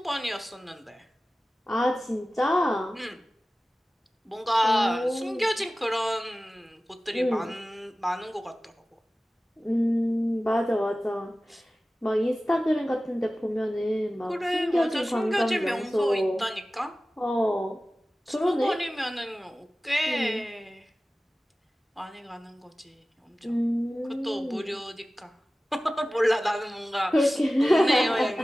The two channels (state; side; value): normal; both; correlation 0.96